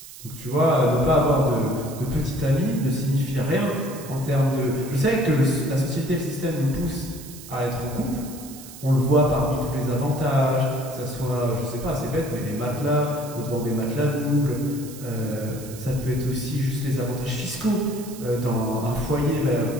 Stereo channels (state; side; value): noise; right; hiss, 16 dB below the sound